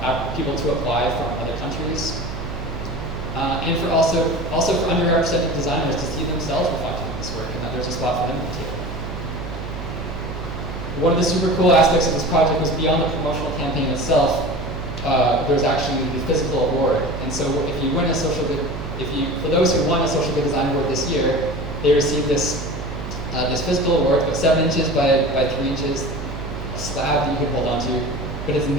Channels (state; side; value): noise; right; hum, 8 dB below the sound